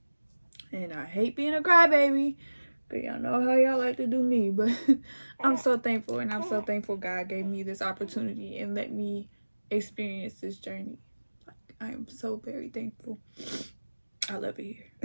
And I hate being a crybaby, but y'all know how y'all like to do me. But I'm so thankful, and I'm so thankful God gave me this opportunity and let me experience this journey. Like, I am so very thankful. I love it here.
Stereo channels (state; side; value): inverted; both; correlation -1.00